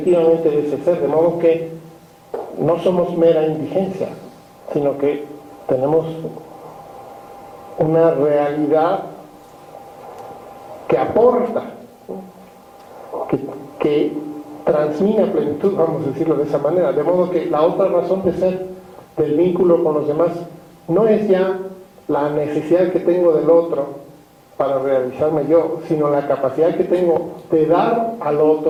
de ese ser, de modo que no somos mera indigencia, sino que tenemos una realidad que aporta, que transmite plenitud, vamos a decirlo de esa manera, de modo que la otra razón de ser del vínculo con los demás no es ya la necesidad que tengo del otro para realizarme yo, sino la capacidad que tengo de dar al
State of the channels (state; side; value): identical; both; correlation 1.00